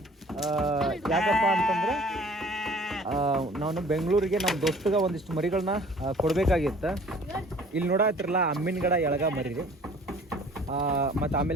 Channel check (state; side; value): normal; both; correlation 0.51